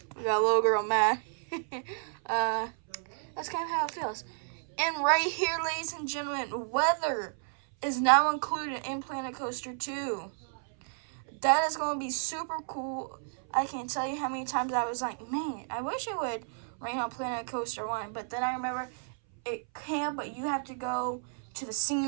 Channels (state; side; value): silent; left; 57 dB below the other